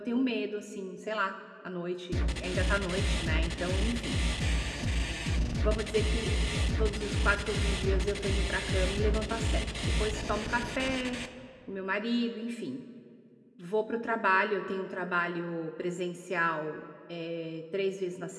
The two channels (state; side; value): identical; both; correlation 1.00